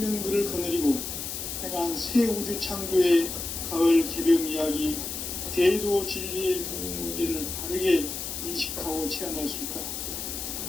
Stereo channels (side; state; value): left; noise; hiss, 5 dB below the sound